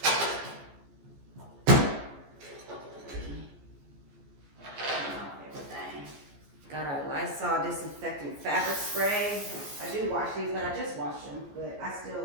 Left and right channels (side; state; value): left; late; 14 ms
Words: Got our Lysol disinfectant fabric spray. I do wash these, but I just washed them. But I